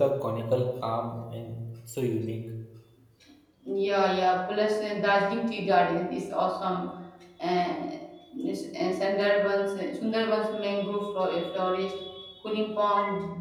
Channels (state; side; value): identical; both; correlation 1.00